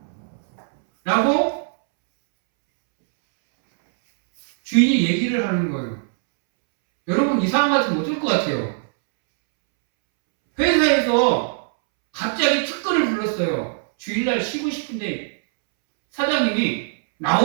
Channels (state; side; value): silent; left; 65 dB below the other